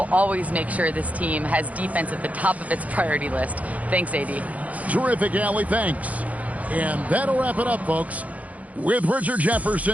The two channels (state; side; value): late; left; 0.071 ms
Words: always make sure this team has defense at the top of its priority list. Thanks, AD. Terrific, Allie. Thanks. And that'll wrap it up, folks. With Richard